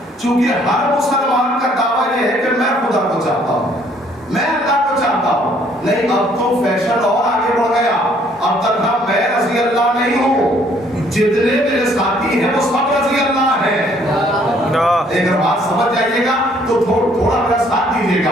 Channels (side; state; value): both; normal; correlation 0.63